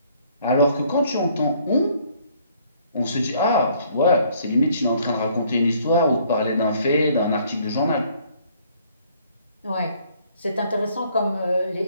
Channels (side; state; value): both; inverted; correlation -0.62